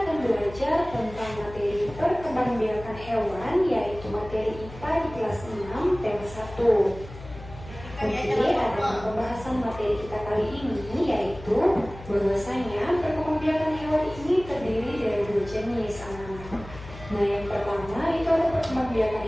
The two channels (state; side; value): noise; left; hum, 15 dB below the sound